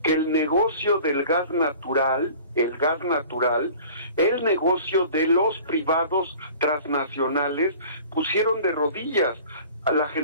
que el negocio del gas natural, el negocio de los privados transnacionales pusieron de rodillas a la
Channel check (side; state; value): both; inverted; correlation -0.45